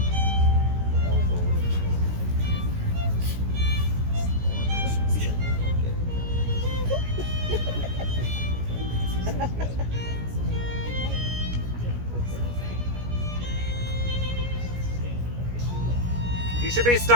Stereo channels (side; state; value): left; late; 17 ms